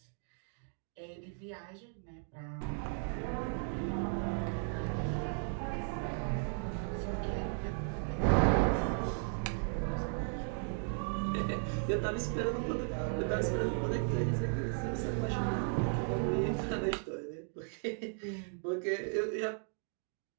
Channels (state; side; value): silent; left; 54 dB below the other